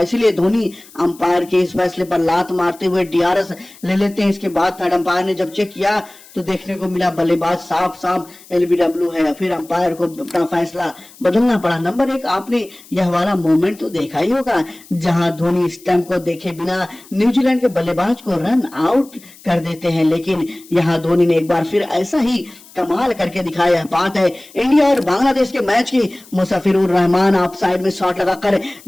इसलिए धोनी अंपायर के इस फैसले पर लात मारते हुए डीआरएस ले लेते हैं। इसके बाद थर्ड अंपायर ने जब चेक किया तो देखने को मिला बल्लेबाज साफ साफ एलबीडब्ल्यू है। फिर अंपायर को अपना फैसला बदलना पड़ा। नंबर 1 आपने यह वाला मोमेंट तो देखा ही होगा जहां धोनी स्टंप को देखे बिना न्यूजीलैंड के बल्लेबाज को रन आउट कर देते हैं, लेकिन यहां धोनी ने एक बार फिर ऐसा ही कमाल करके दिखाया। बात है इंडिया और बांग्लादेश के मैच की। मुस्तफिजुर रहमान ऑफ साइड में शॉट लगाकर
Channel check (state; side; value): noise; left; hiss, 23 dB below the sound